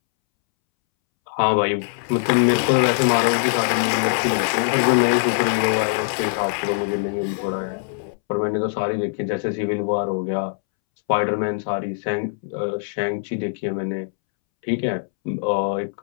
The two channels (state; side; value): silent; right; 64 dB below the other